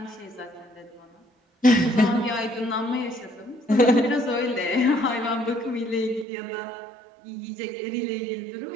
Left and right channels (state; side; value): drops out; left; at 6.2 s